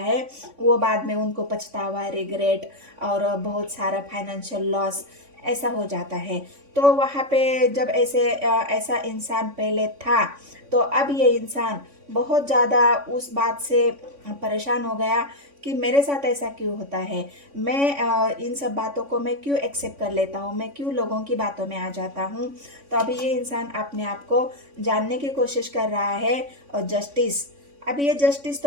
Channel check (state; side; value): late; left; 3.5 ms